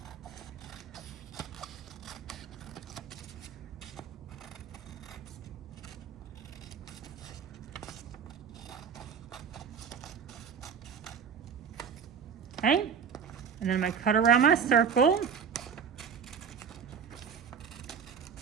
Okay, and then I'm gonna cut around my circle.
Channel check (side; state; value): left; quieter; 7.0 dB